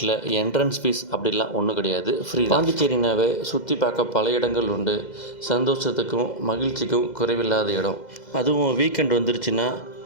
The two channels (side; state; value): right; late; 2.0 ms